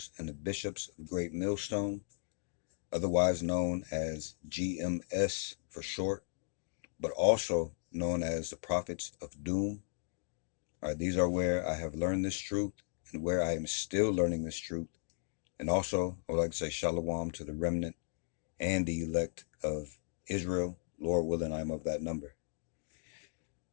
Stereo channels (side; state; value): right; silent; digital silence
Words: and the bishops of Great Millstone, otherwise known as GMS for short, but also known as the prophets of doom. All right, these are where I have learned this truth and where I am still learning this truth. And also, I would like to say shalom to the remnant and the elect of Israel. Lord willing, I am of that number.